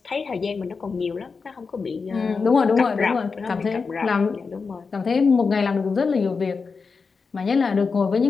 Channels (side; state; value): right; quieter; 4.9 dB